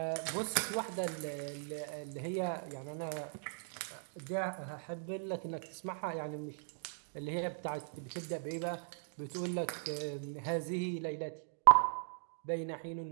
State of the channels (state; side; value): silent; left; digital silence